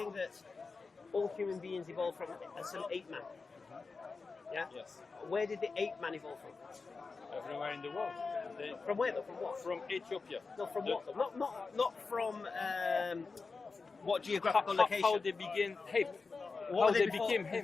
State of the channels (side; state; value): right; quieter; 4.4 dB